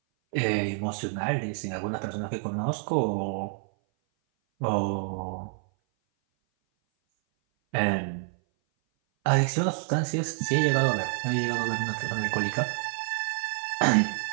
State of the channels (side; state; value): left; silent; 57 dB below the other